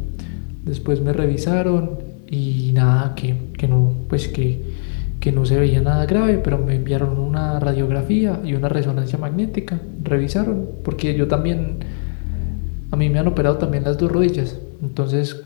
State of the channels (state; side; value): silent; right; digital silence